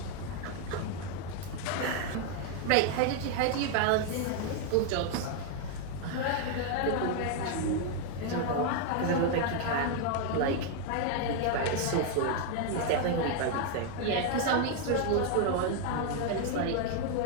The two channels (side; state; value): both; different; correlation 0.01